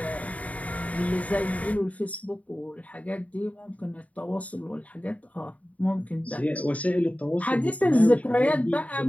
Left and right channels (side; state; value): right; late; 0.069 ms